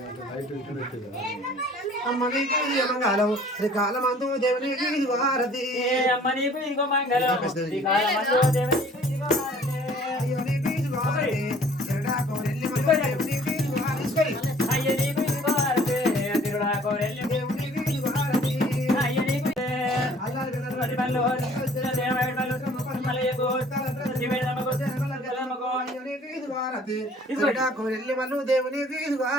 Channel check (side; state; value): both; normal; correlation 0.54